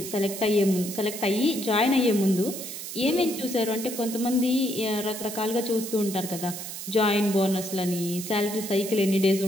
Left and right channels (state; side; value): noise; right; hiss, 8 dB below the sound